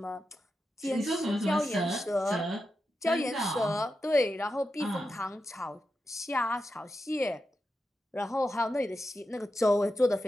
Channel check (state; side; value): normal; both; correlation 0.89